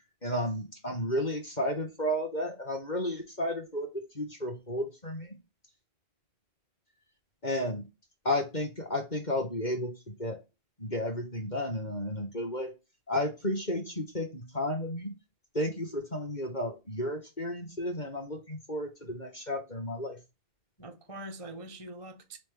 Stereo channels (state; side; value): late; right; 2.1 ms